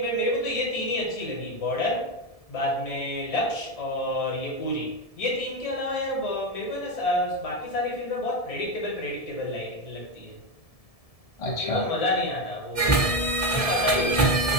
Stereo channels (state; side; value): late; right; 1.7 ms